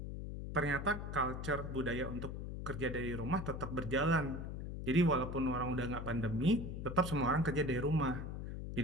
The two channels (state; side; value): noise; left; hum, 6 dB below the sound